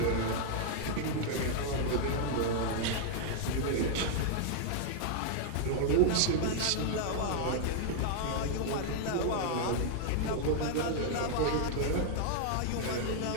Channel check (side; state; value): both; different; correlation 0.00